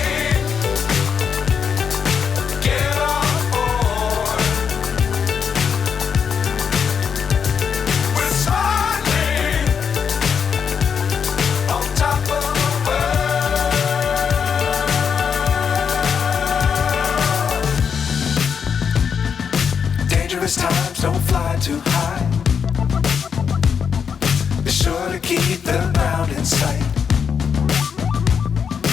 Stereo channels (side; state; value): right; quieter; 6.8 dB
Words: Dangerous times, don't fly too high. Be sure to keep the ground in sight.